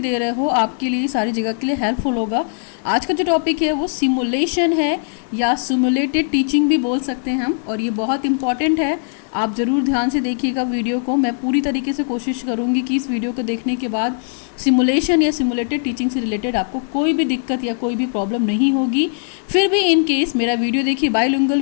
रहे हो, आपके लिए सारी जगह के लिए हेल्पफुल होगा. आज का जो टॉपिक है वो सिमुलेशन है या सिमुलेटेड टीचिंग भी बोल सकते हैं हम, और ये बहुत इंपॉर्टेंट है. आप ज़रूर ध्यान से देखिएगा वीडियो को. मैं पूरी तरीके से कोशिश करूँगी कि इस वीडियो को देखने के बाद सिमुलेशन या सिमुलेटेड टीचिंग से रिलेटेड आपको कोई भी दिक्कत या कोई भी प्रॉब्लम नहीं होगी. फिर भी इन केस मेरा वीडियो देखिए, बाइलिंगुअल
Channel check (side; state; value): right; silent; 63 dB below the other